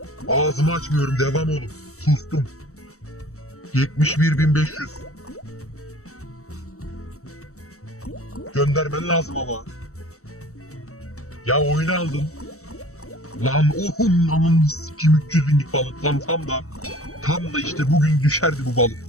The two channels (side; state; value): right; late; 0.65 ms